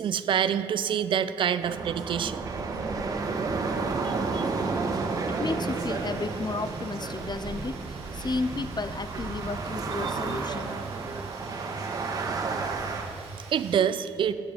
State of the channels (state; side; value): quieter; left; 4.1 dB